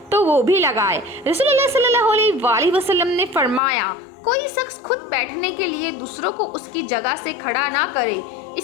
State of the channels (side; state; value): right; drops out; at 3.6 s